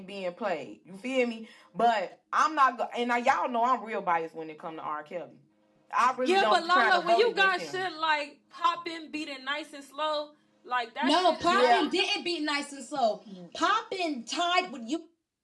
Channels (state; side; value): identical; both; correlation 1.00